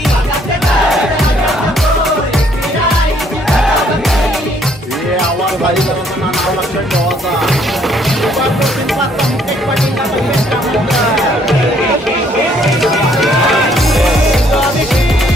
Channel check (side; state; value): both; normal; correlation 0.65